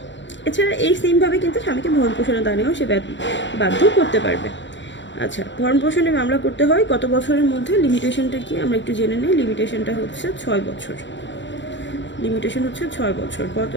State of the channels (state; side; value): late; right; 0.53 ms